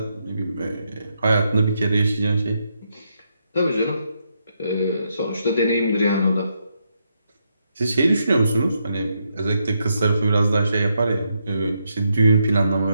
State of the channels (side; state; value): both; inverted; correlation -0.80